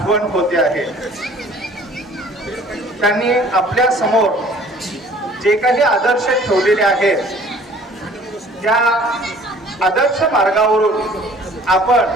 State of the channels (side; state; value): both; normal; correlation 0.52